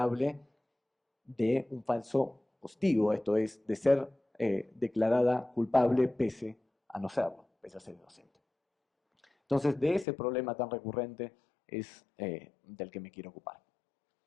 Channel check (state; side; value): drops out; right; at 10.1 s